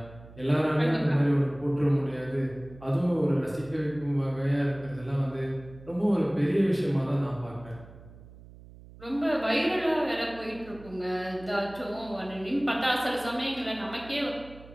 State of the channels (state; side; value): noise; right; hum, 19 dB below the sound